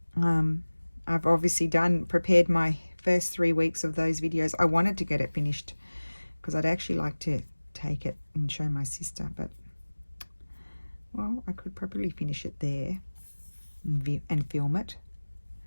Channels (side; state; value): both; inverted; correlation -1.00